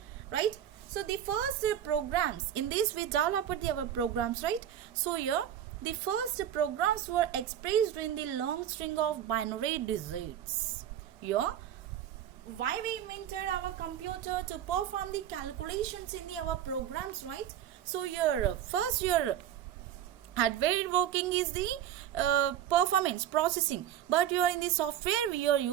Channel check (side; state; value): left; quieter; 10.6 dB